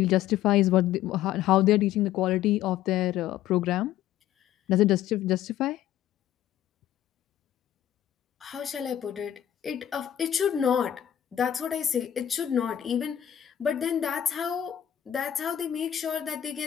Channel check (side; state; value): right; quieter; 11.3 dB